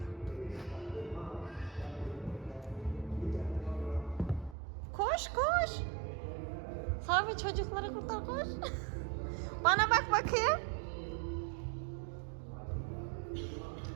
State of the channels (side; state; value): left; drops out; at 4.5 s